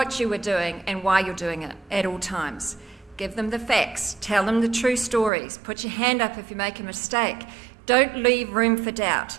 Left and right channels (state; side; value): drops out; left; at 5.3 s